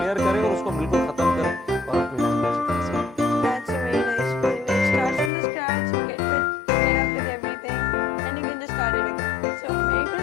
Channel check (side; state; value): right; drops out; at 5.3 s